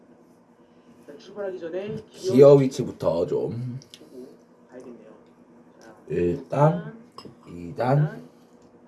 자, 출발하기 전에 기어 위치부터 좀 보고 가야겠네요. 자, 1단, 2단,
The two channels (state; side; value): identical; both; correlation 1.00